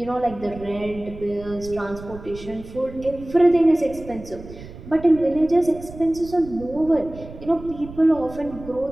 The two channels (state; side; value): noise; right; rumble, 15 dB below the sound